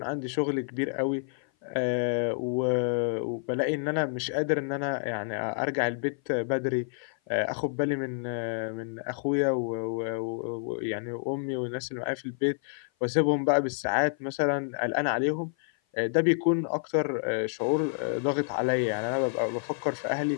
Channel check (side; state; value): right; silent; 55 dB below the other